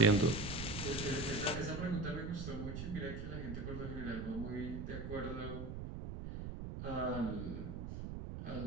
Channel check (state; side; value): noise; right; rumble, 6 dB below the sound